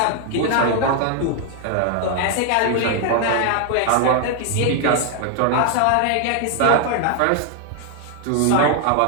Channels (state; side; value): different; both; correlation 0.00